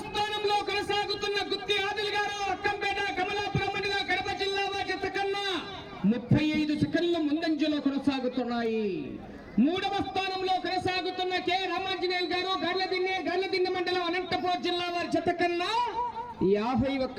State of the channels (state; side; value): identical; both; correlation 1.00